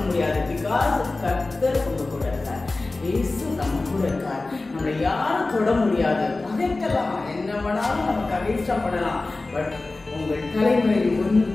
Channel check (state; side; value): quieter; right; 3.3 dB